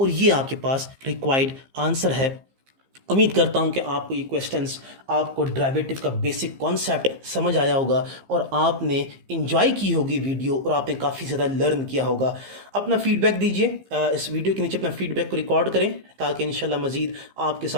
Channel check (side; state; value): left; late; 15 ms